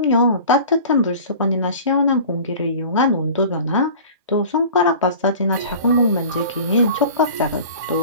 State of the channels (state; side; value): inverted; both; correlation -0.41